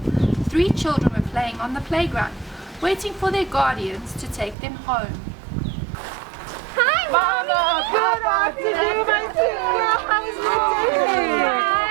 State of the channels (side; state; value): left; drops out; at 4.5 s